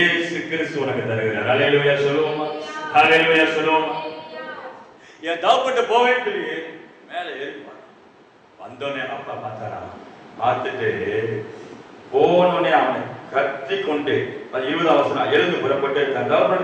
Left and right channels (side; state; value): both; identical; correlation 1.00